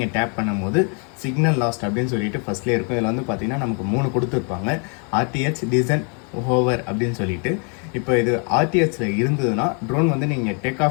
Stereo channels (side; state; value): right; quieter; 37.9 dB